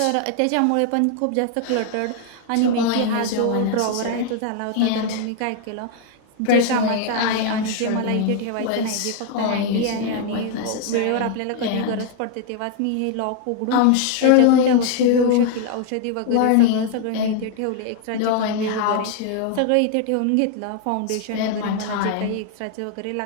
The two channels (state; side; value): different; both; correlation 0.00